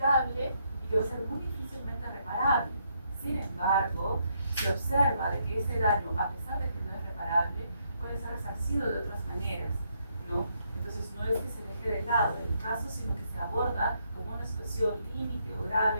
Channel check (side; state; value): both; inverted; correlation -0.75